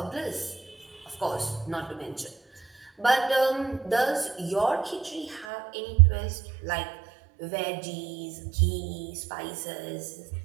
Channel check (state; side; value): drops out; left; at 5.5 s